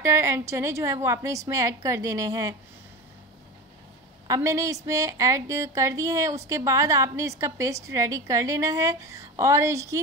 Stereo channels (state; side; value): normal; both; correlation 0.27